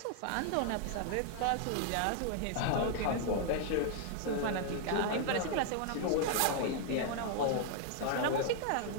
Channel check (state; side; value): different; both; correlation 0.00